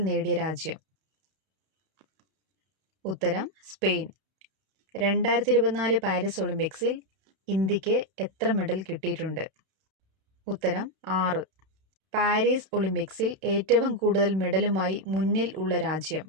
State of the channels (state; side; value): late; left; 32 ms